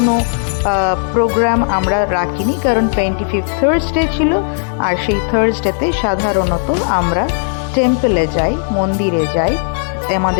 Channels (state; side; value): silent; right; digital silence